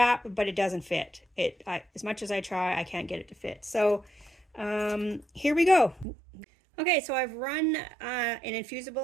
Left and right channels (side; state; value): left; drops out; at 6.1 s